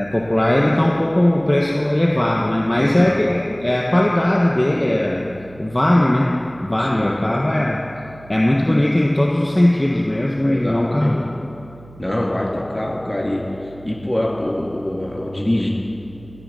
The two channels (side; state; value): right; noise; hum, 22 dB below the sound